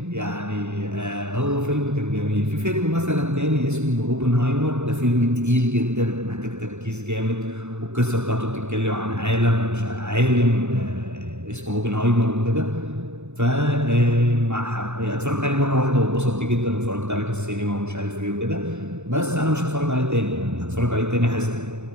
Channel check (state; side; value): late; left; 0.82 ms